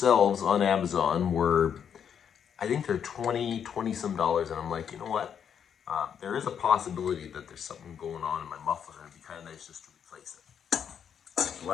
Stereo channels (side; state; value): right; quieter; 8.1 dB